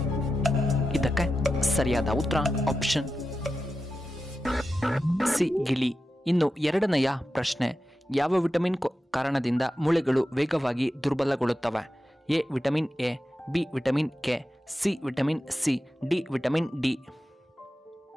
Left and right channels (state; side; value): normal; both; correlation 0.91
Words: ಇದಕ್ಕೆ ಸರಿಯಾದ ಉತ್ತರ ಆಪ್ಷನ್ ಸಿ ಗಿಳಿ. ಇನ್ನು ಎರಡನೆಯ ಪ್ರಶ್ನೆ, ಯಾವ ವಿಟಮಿನ್ ಕಾರಣದಿಂದ ಮೂಳೆಗಳು ವೇಗವಾಗಿ ದುರ್ಬಲಗೊಳ್ಳುತ್ತವೆ? A vitamin A, B vitamin K, C vitamin C, D vitamin D.